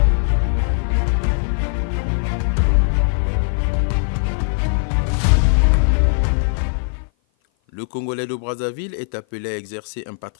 Le Congolais de Brazzaville est appelé à exercer un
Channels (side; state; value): right; silent; 56 dB below the other